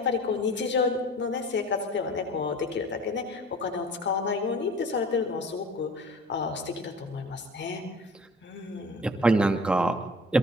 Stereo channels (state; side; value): normal; both; correlation 0.43